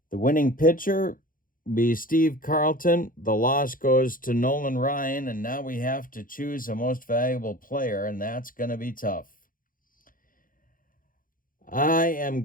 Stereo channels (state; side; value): late; right; 0.40 ms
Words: The winning pitcher be Steve Carlton. The loss goes to Nolan Ryan, and now we have to choose a most valuable player, and that's going to be tough. I am